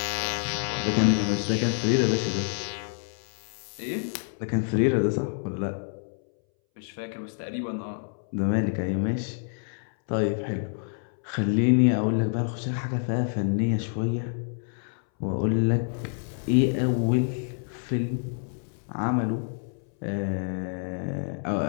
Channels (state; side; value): silent; right; 60 dB below the other